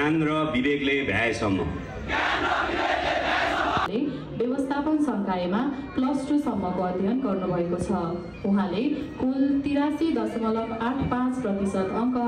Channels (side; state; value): both; identical; correlation 1.00